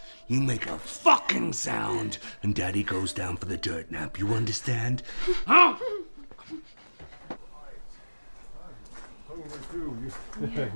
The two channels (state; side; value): inverted; both; correlation -1.00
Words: You make a fucking sound, and Daddy goes down for the dirt nap. You understand? Huh?